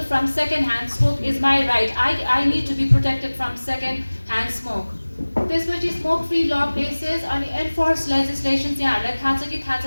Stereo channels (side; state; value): both; inverted; correlation -1.00